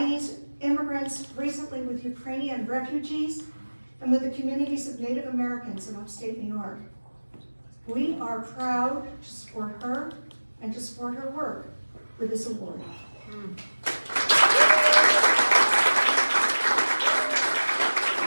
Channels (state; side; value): inverted; both; correlation -1.00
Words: immigrants, recently with Ukrainian refugees, and with the communities of Native Americans in upstate New York. We are proud to support her and to support her work with this award.